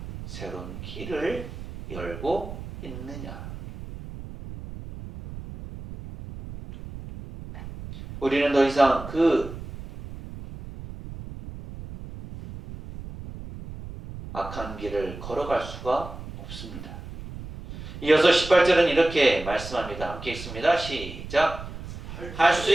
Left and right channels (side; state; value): right; noise; rumble, 12 dB below the sound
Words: 새로운 길을 열고 있느냐? 우리는 더 이상 그 악한 길을 걸어갈 수가 없습니다. 이어서 18절은 이렇게 말씀합니다. 함께 읽습니다. 시작. 할 수